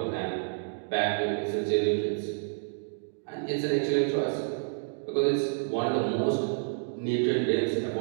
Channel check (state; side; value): silent; left; digital silence